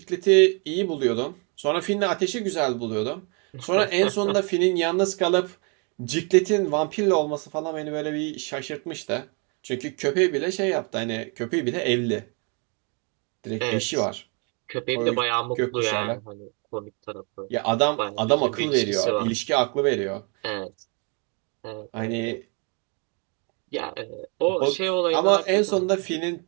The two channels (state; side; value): quieter; left; 35.4 dB